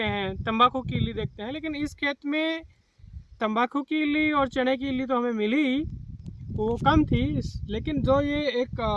हैं, तंबाकू की इल्ली देखते हैं। लेकिन इस खेत में तंबाकू की इल्ली और चने की इल्ली तो हमें मिली ही, वो कम थी। लेकिन जो ये एक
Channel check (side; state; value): both; identical; correlation 1.00